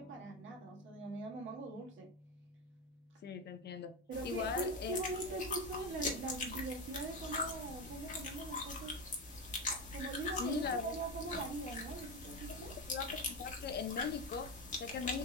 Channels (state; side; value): normal; both; correlation 0.16